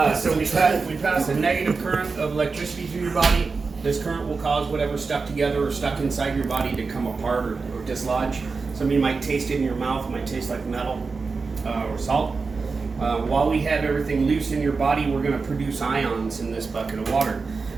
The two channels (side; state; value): left; quieter; 4.5 dB